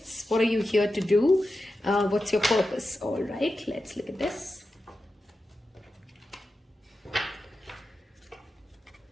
what are you here to do, what's your purpose. All right, let's look at this.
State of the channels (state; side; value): normal; both; correlation 0.91